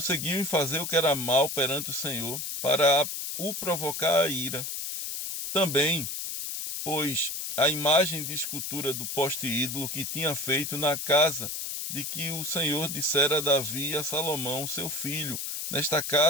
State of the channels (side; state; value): left; noise; hiss, 4 dB below the sound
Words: em fazer o que era mal perante o Senhor, para o provocar a ira. Também, pois, a imagem de escultura do poste ídolo que tinha feito na casa de que o Senhor dissera a Davi e a Salomão, seu filho, nesta